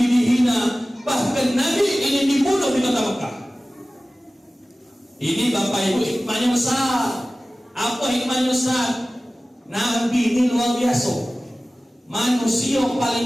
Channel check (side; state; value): both; normal; correlation 0.97